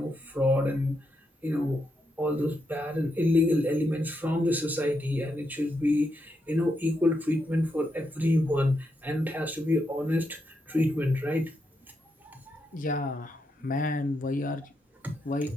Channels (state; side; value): normal; both; correlation 0.82